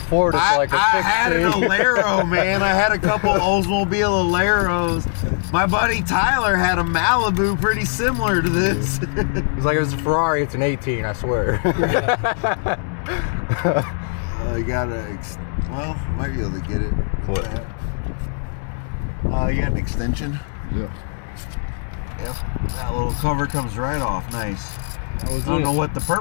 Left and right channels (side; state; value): right; silent; 65 dB below the other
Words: Ford, it's like a fixed I had an Alero, man. I had a couple Oldsmobile Aleros. My buddy Tyler had a Malibu pretty similar to this. It's like, if it's a Ferrari, it's an 18, I swear. You gotta, well, might be able to get it. What? You got an extension? Yeah. Yep. That little cover comes right off. Nice. I don't know what the